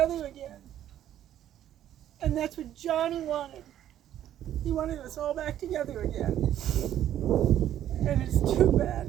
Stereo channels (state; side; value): quieter; left; 11.5 dB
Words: again. And that's what Johnny wanted. He wanted us all back together again. And it's too